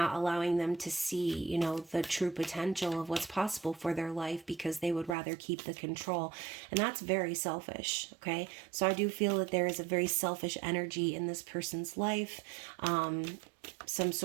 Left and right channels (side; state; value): left; drops out; at 5.2 s